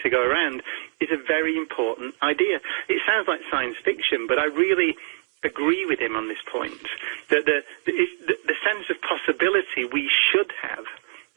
to go around, is a very important idea. It sounds like science fiction, but I really agree with him on this point, that the sense of possibility we should have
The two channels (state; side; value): silent; left; 62 dB below the other